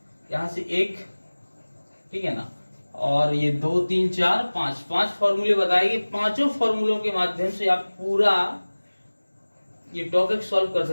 यहाँ से 1, ठीक है ना, और ये 2, 3, 4, 5 फॉर्मूले बताए गए। पांचों फॉर्मूलों के माध्यम से आप पूरा ये टॉपिक सॉल्व कर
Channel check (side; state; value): both; inverted; correlation -1.00